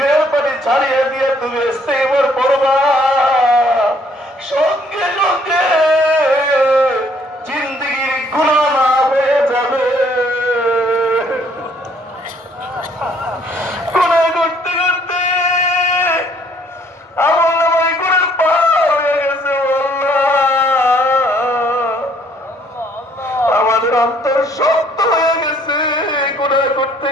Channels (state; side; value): normal; both; correlation 0.63